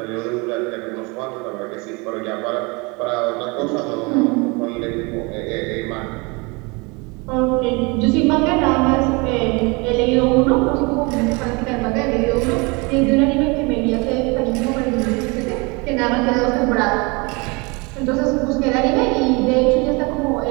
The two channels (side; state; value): left; quieter; 28.1 dB